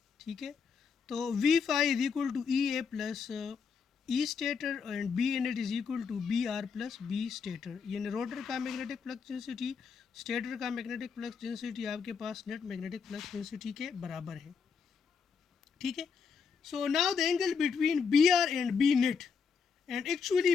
ठीक है, तो V phi is equal to E A plus E stator and B net is equal to B R plus B stator. यानी रोटर का मैग्नेटिक फ्लक्स डेंसिटी स्टेटर का मैग्नेटिक फ्लक्स डेंसिटी आपके पास नेट मैग्नेटिक फ्लक्स डेंसिटी के बराबर है। ठीक है, so now the angle between B R and B net, and actually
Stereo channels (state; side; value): quieter; right; 5.9 dB